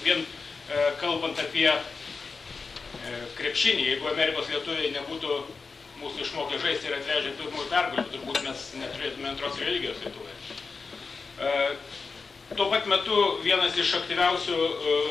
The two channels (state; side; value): quieter; right; 4.6 dB